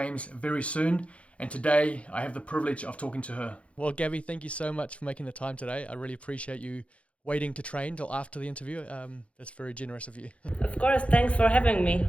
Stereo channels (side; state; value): right; late; 0.062 ms